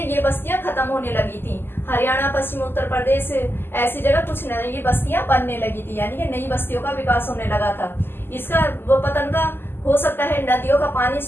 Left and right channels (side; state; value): right; late; 0.10 ms